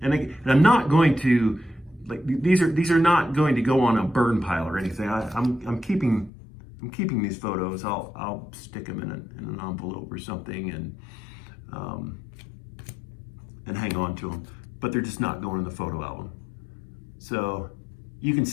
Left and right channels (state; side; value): drops out; right; at 6.3 s